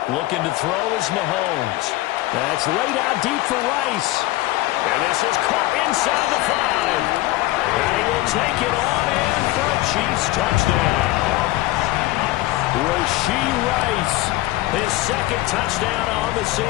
Looking to throw is Mahomes. That's laid out deep for Rice. And this is caught inside the 5. And he will take it on in for a Chiefs touchdown. Rashee Rice, his 2nd touchdown on the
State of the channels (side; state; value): right; quieter; 18.0 dB